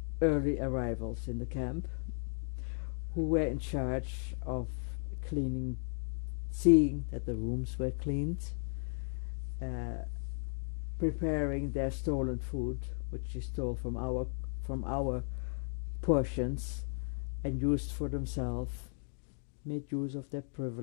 early arrivals in the camp, who were in charge of cleaning, seeing that the rooms were cleaned, preparing their stolen food, which they stole from our portions and used for themselves, made use of their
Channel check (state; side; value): silent; right; digital silence